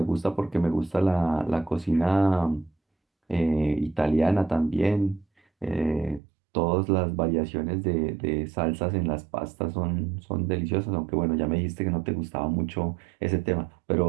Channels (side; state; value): left; drops out; at 6.2 s